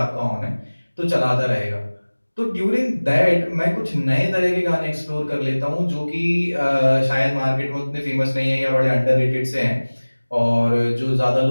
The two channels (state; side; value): inverted; both; correlation -1.00